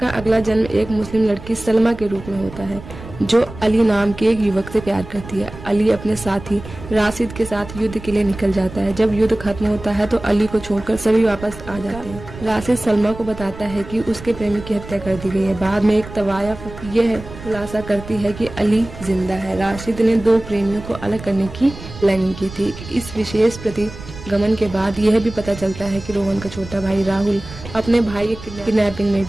अगला जन्म एक मुस्लिम लड़की सलमा के रूप में होता है, जो अली नाम के एक युवक से प्यार करती है। अली अपने साथी राशिद के साथ युद्ध के लिए निकल जाता है। जब युद्ध खत्म होता है तो अली को छोड़कर सभी वापस आ जाते हैं। राशिद सलमा को बताता है कि उसके प्रेमी की हत्या कर दी गई है। बाद में एक तवायफ यह खुलासा करती है कि अली जिंदा है। राशिद ने 2 प्रेमियों को अलग करने की प्लानिंग की थी। इस विशेष प्रतिगमन के बाद यह भी पता चलता है कि रोहन का छोटा भाई राहुल अपने भाई के किडनैपिंग में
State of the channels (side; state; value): right; noise; rumble, 14 dB below the sound